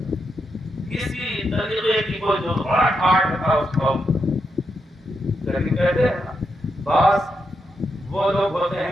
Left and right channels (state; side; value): normal; both; correlation 0.83